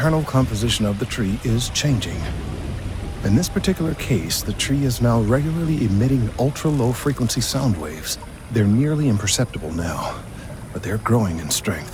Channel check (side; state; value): both; identical; correlation 1.00